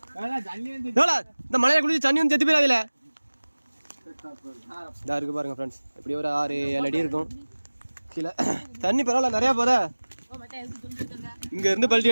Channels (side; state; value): both; inverted; correlation -1.00